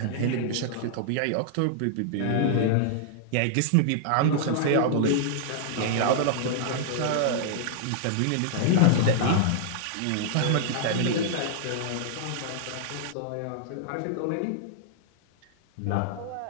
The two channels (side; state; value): both; different; correlation -0.01